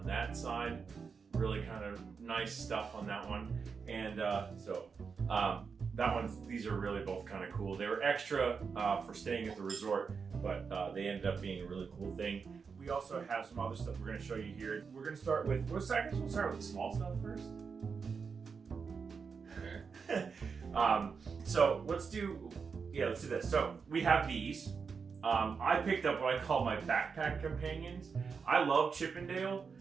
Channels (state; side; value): quieter; left; 5.6 dB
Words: that side. Really kind of nice stuff on that one. And these are really both kind of cool. They were extra for staying at the resort, but they ended up being a really cool thing. We also have some other stuff we're going to show you here. We're going to start with, we'll start with the small stuff first. So let's do this. So we have these. I picked up what I call my backpack companions. I love Chippendale,